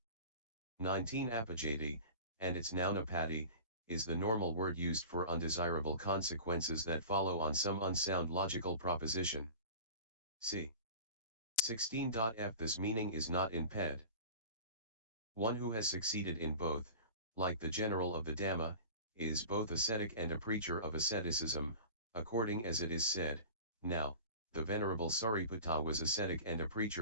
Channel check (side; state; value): both; inverted; correlation -0.37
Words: 19 apajati, and its noun apati, is the normal word used for undesirable consequences that follow on some unsound logical proposition. C. 16.f. This meaning is not in ped. One who has succeeded in both, like the general of the Dhamma, is both ascetic and a preacher of asceticism, according as it is said, now, the Venerable Sariputta was ascetic and a